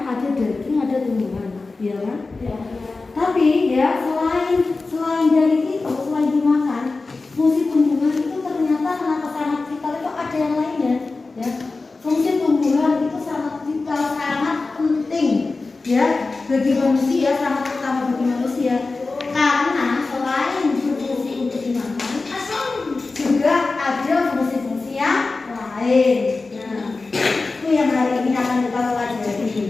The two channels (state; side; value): quieter; right; 3.7 dB